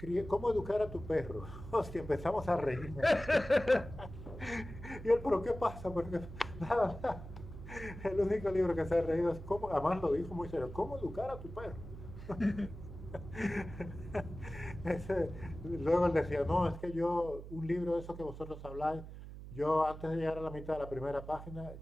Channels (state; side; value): noise; right; hum, 12 dB below the sound